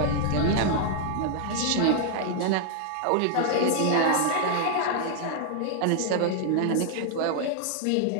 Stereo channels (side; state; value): both; different; correlation 0.00